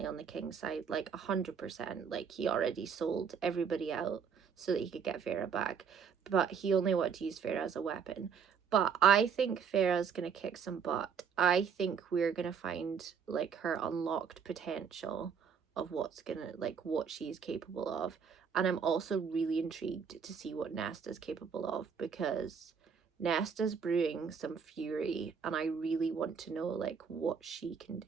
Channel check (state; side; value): quieter; left; 6.7 dB